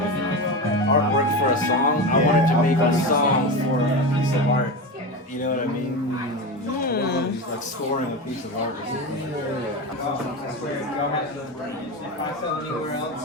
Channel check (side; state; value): both; normal; correlation 0.22